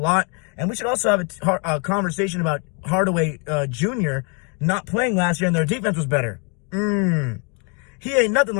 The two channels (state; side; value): quieter; right; 35.8 dB